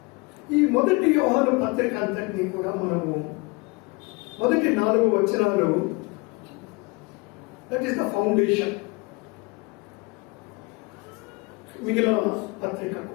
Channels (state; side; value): quieter; right; 27.0 dB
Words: ఈ మొదటి యోహాను పత్రిక అంతటినీ కూడా మనము మొదటి 4 వచనాలు, దట్ ఈస్ ద ఫౌండేషన్ మిగిలిన